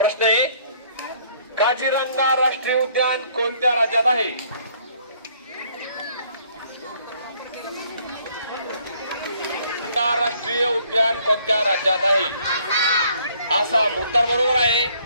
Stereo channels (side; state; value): both; inverted; correlation -0.63